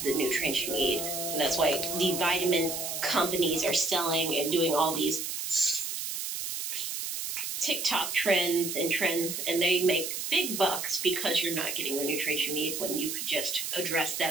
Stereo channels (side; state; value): right; noise; hiss, 4 dB below the sound